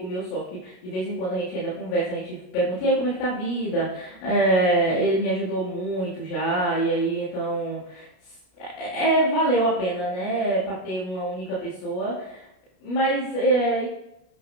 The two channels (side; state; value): right; late; 33 ms